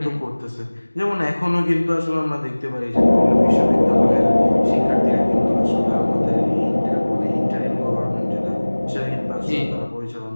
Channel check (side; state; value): both; inverted; correlation -1.00